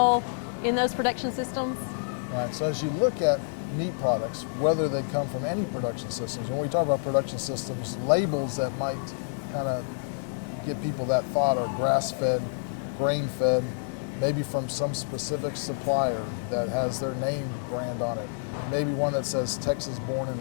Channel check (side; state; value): right; silent; digital silence